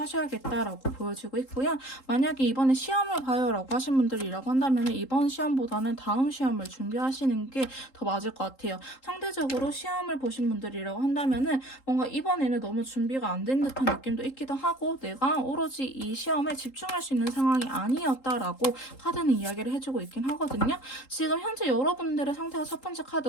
보여지고 있고요. 만약에 이번에 시험을 봐요 라고 하신 분들이라고 한다면 이번 시험보다는 다음 시험을 준비하시는 게 더 맞을 것 같아요. 상대적으로 시험을 보신 분들이라고 한다면 뭔가 이번에는 너무 준비가 안 된 듯한 느낌도 있기도 하고 내가 오로지 이 시험에 집중할 수 있는 상황이 아니었다라고 카드는 이야기를 해주고 있긴 하거든요. 지금 현재 여러분들의 상태가 첫 번째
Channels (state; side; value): late; right; 3.8 ms